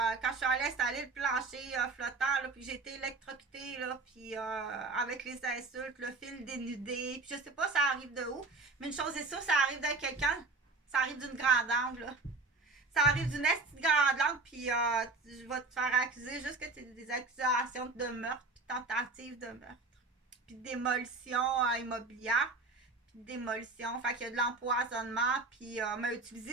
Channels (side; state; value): left; quieter; 3.7 dB